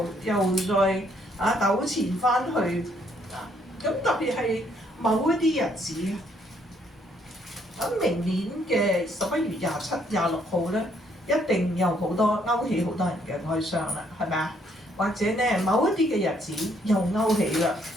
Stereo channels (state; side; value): normal; both; correlation 0.69